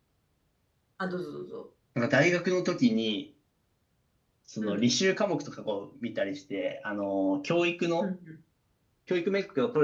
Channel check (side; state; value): both; identical; correlation 1.00